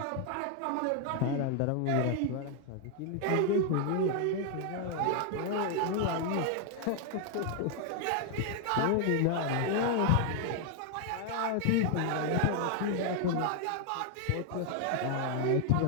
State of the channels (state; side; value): different; both; correlation 0.00